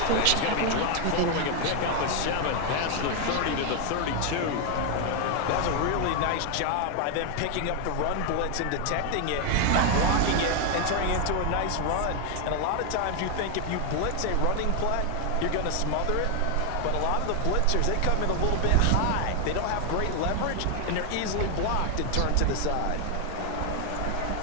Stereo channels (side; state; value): both; different; correlation 0.01